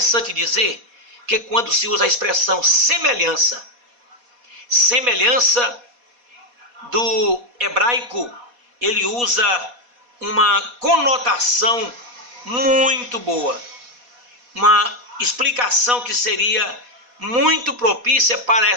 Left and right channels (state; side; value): late; left; 4.1 ms